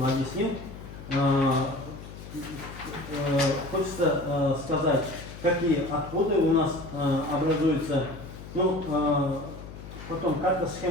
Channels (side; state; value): left; noise; hum, 13 dB below the sound